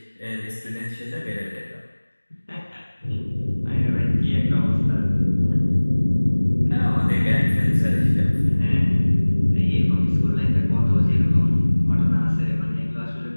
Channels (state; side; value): inverted; both; correlation -1.00